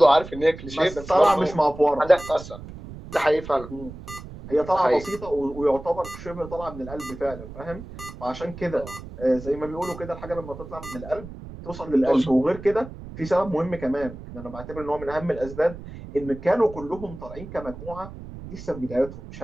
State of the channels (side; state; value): right; noise; rumble, 13 dB below the sound